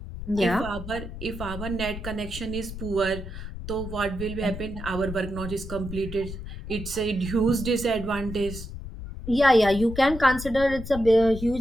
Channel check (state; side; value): noise; left; rumble, 9 dB below the sound